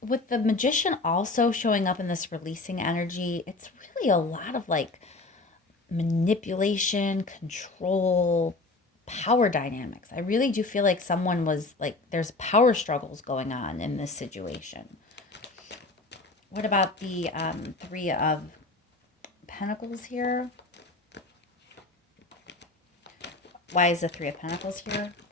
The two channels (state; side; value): quieter; right; 3.3 dB